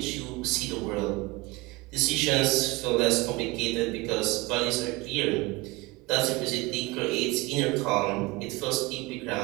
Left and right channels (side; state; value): left; quieter; 22.6 dB